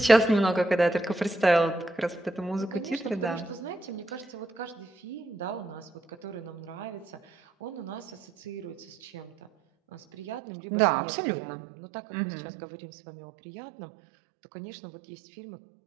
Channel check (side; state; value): left; drops out; at 10.4 s